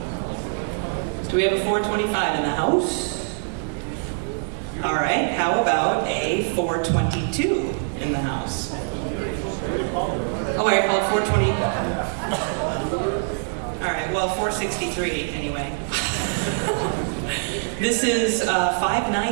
Do we have a 425 in the house? All right, how about a 422 in the house? Oh, I called 420. All right, well, 463 anyway. This is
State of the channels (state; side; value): silent; left; 62 dB below the other